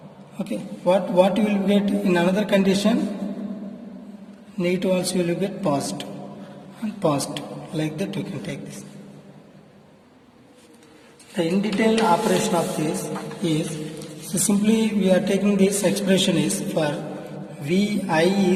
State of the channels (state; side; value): identical; both; correlation 1.00